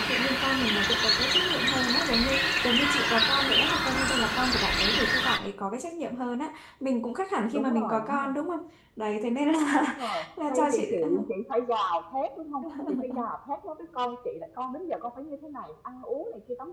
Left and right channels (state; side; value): identical; both; correlation 1.00